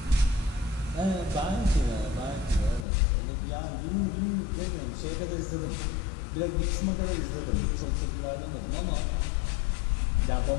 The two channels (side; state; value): right; drops out; at 2.9 s